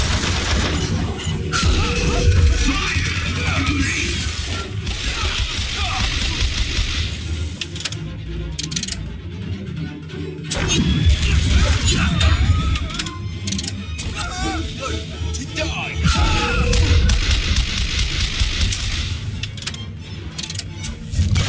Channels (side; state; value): both; identical; correlation 1.00